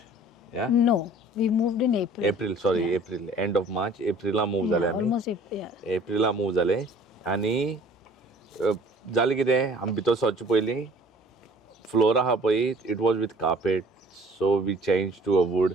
या No, we moved in April. April end of March Aprilia move जाले आमी Almost April. एप्रिला मूव जाले आनी जालें कितें आमी भितर सरचे पयलीं फ्लोर आहा पळय it was with carpet so we change to a wood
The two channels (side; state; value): both; normal; correlation 0.52